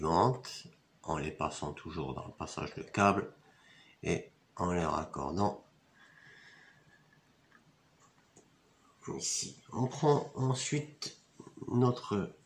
en les passant toujours dans le passage de câble et en les raccordant ici. On prend ensuite notre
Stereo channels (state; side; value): identical; both; correlation 1.00